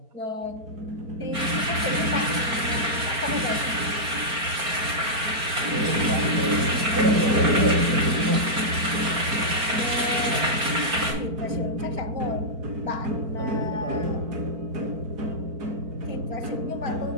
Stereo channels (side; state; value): left; late; 4.4 ms